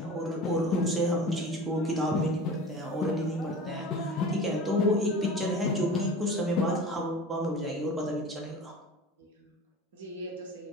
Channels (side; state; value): both; normal; correlation 0.36